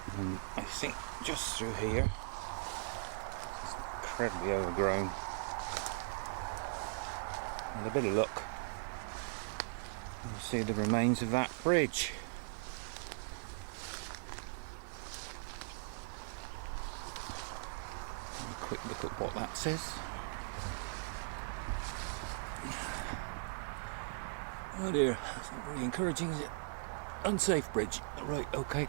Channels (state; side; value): silent; left; 52 dB below the other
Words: and I think just through here. It's incredibly overgrown. With a bit of luck, you'll see the remains of that bridge. A quick look at what that says. Oh dear, that's not very encouraging, is it? Unsafe bridge. Right, okay,